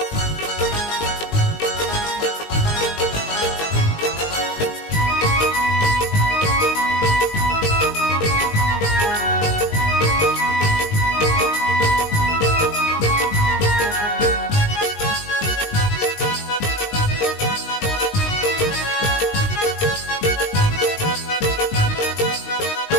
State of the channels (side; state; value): right; late; 19 ms